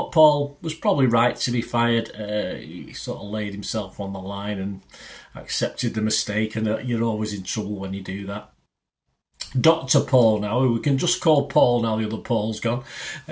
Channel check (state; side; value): identical; both; correlation 1.00